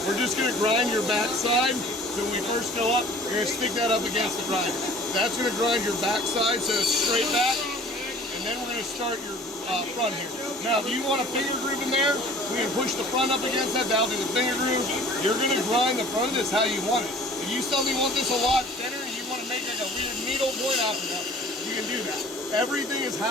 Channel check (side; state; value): both; normal; correlation 0.48